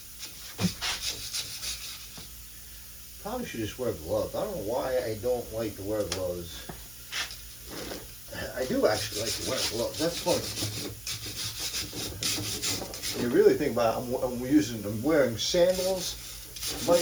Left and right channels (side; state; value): right; noise; hum, 19 dB below the sound